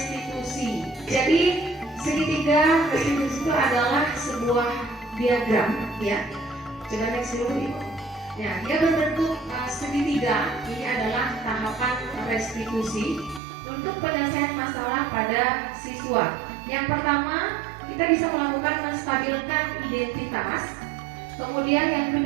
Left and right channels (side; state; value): left; drops out; at 13.4 s